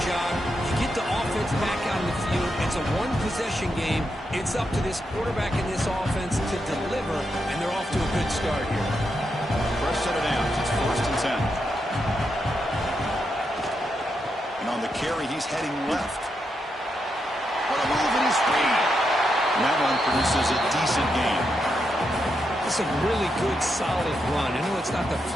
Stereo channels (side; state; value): both; normal; correlation 0.83